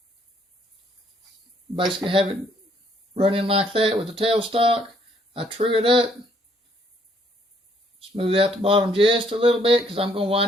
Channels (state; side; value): normal; both; correlation 0.67